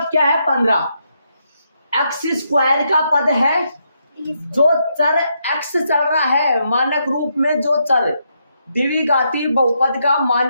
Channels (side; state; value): both; inverted; correlation -0.79